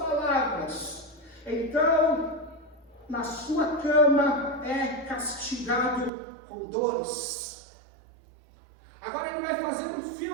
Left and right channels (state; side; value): drops out; left; at 6.1 s